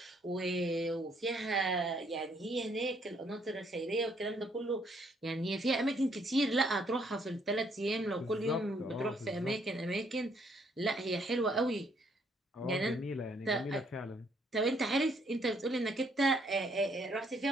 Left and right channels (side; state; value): both; normal; correlation 0.68